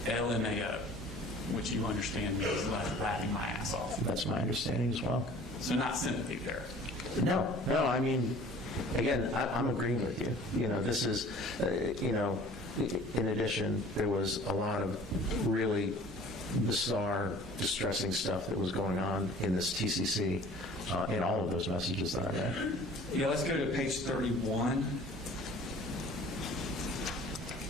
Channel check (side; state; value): both; normal; correlation 0.48